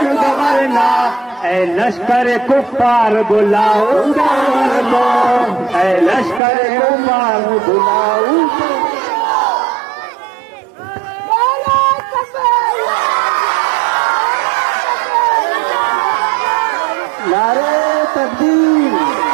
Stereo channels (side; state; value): left; drops out; at 6.4 s